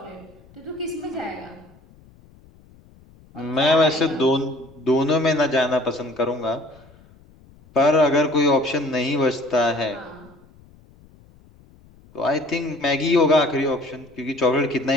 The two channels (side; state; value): left; noise; rumble, 27 dB below the sound